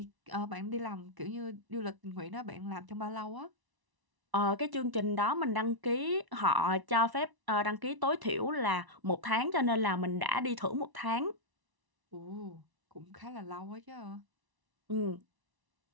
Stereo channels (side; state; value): left; late; 1.0 ms